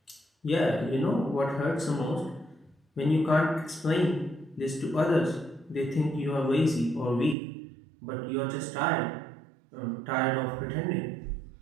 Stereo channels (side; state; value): left; drops out; at 7.4 s